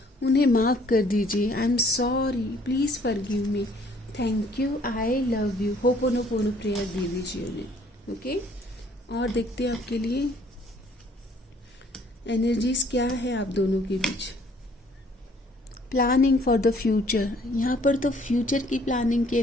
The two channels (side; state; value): both; normal; correlation 0.60